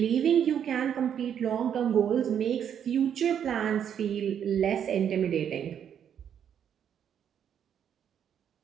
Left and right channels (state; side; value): quieter; left; 8.8 dB